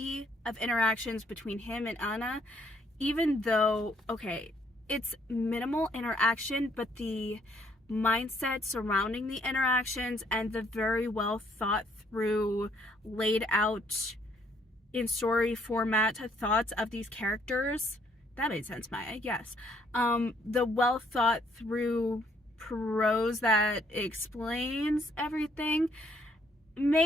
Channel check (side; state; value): both; normal; correlation 0.67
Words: of interactions between him and Anna, even though, okay, it's minimal interaction, but the mindset surrounding the interactions and the very well thought through, laid out in story format thoughts of these characters, that made sense, Maya, yes. The well thought through prose that explains everything